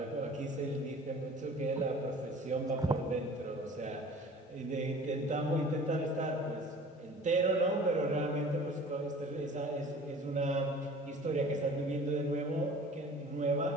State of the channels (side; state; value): both; normal; correlation 0.46